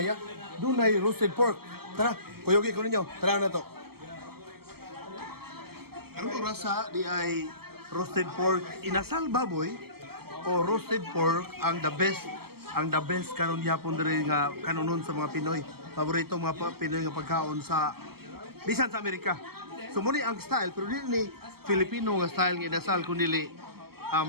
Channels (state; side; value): late; left; 0.95 ms